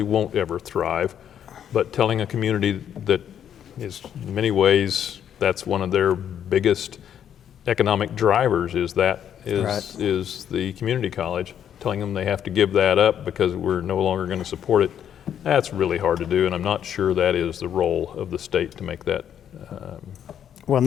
won't ever thrive. But telling a community that is in many ways That's one of their biggest economic drivers is the community college, telling them they have to give that up because we're no longer going to support it. That's really hard to do, and I'm not sure that is the role of the state to make that Well,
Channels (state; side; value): quieter; right; 9.3 dB